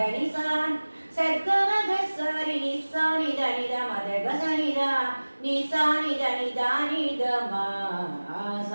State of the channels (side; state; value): both; inverted; correlation -1.00